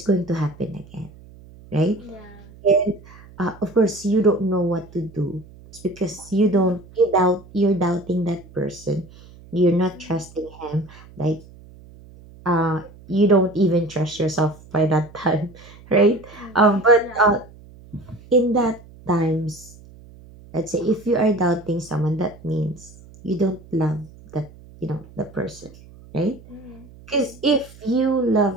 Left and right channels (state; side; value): noise; right; hum, 22 dB below the sound